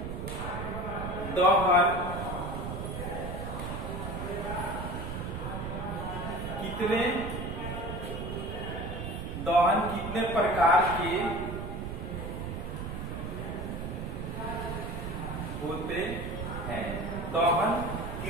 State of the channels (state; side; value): noise; right; rumble, 5 dB below the sound